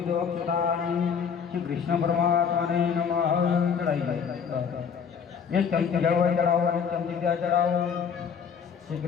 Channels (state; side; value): quieter; right; 6.8 dB